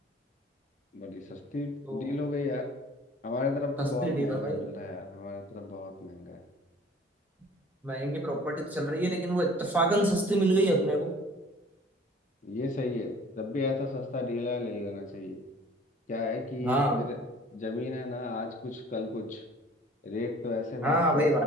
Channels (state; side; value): normal; both; correlation 0.50